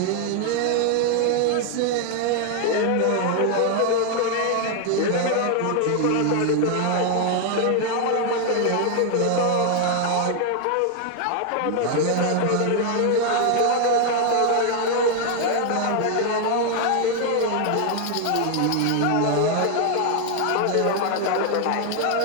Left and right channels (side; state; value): both; different; correlation 0.00